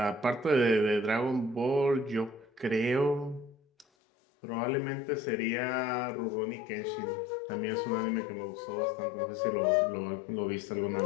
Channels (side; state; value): right; drops out; at 3.9 s